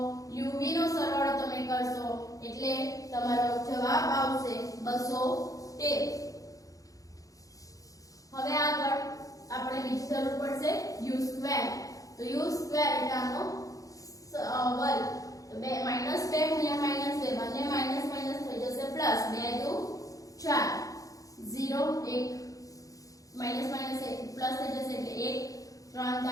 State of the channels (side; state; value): right; late; 0.17 ms